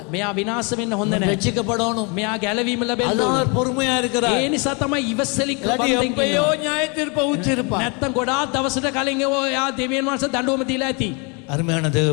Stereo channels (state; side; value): quieter; right; 32.3 dB